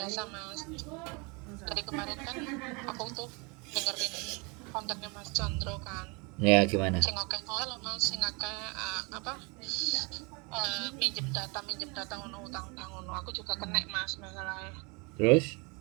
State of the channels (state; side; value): quieter; left; 30.0 dB